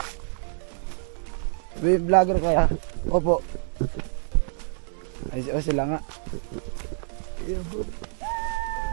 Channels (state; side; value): silent; left; digital silence